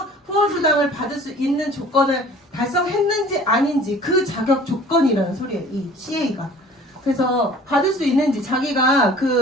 후원수당을 받을 수 있는 조건을 달성했는지 아닌지 그 자격 조건이라는 소리예요. 이 CA가. 그래서 받을 수 있는지 자기가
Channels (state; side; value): normal; both; correlation 0.48